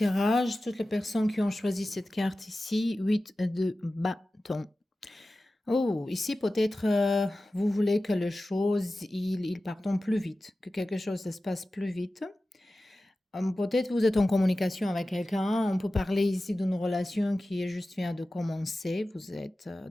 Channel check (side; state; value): both; normal; correlation 0.95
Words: toutes les personnes qui ont choisi cette carte ici, 8 de bâton. Oh, ici peut-être vous voulez que les choses ils partent plus vite, que quelque chose se passe plus vite. Peut-être vous êtes en communication avec quelqu'un. On peut parler ici d'une relation qui est juste vient de commencer. Vous êtes